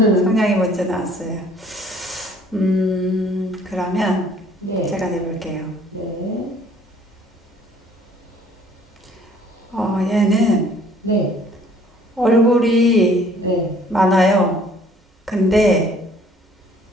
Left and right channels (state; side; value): normal; both; correlation 0.57